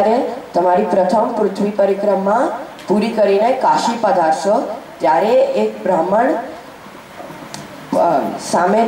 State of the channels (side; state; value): both; identical; correlation 1.00